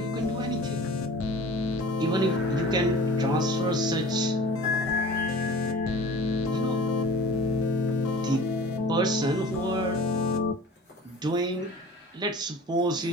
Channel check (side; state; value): both; normal; correlation 0.42